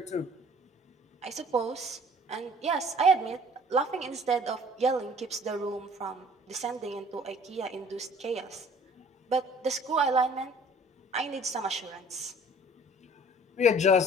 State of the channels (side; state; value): both; normal; correlation 0.52